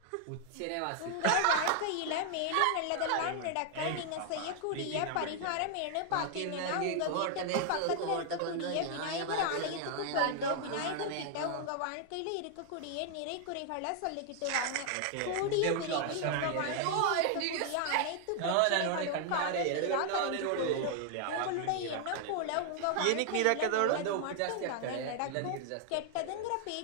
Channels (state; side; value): different; both; correlation 0.00